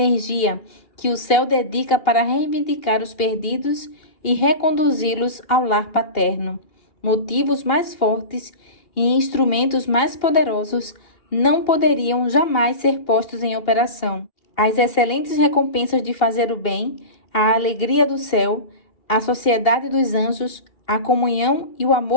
que o céu dedica para reivindicar os perdidos e reconduzi-los ao lar paterno. Motivos mais fortes e instrumentos mais poderosos não poderiam jamais ser postos em operação. As excelentes recompensas de fazer o bem, a alegria do céu, a sociedade dos anjos, a comunhão e o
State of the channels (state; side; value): late; right; 2.7 ms